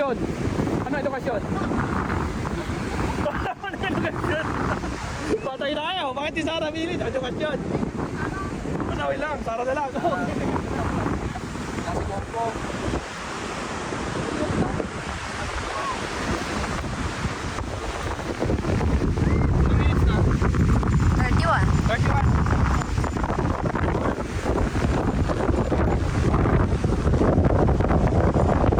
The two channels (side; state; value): both; identical; correlation 1.00